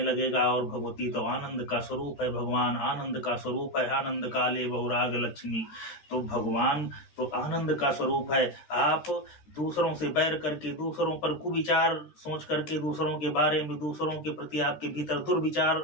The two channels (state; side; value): late; right; 13 ms